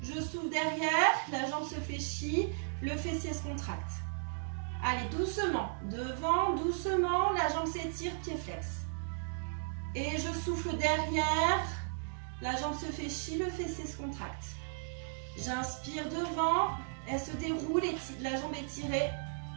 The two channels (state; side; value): silent; left; digital silence